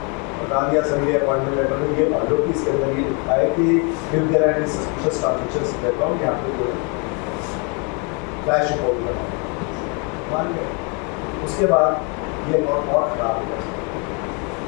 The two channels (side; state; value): right; quieter; 34.0 dB